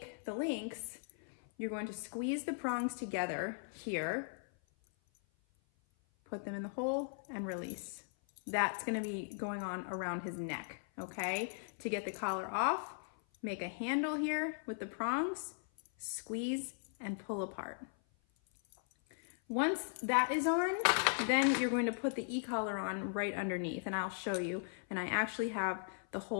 the links, you're going to squeeze the prongs together here, put them in the hole and release. That's gonna be going on around his neck, okay? To get the collar off, make a handle here with the prongs, squeeze and pull apart. Once that is on, then you're going to put the e-collar on right underneath, and I'll show you. And I actually have the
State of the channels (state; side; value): silent; right; 52 dB below the other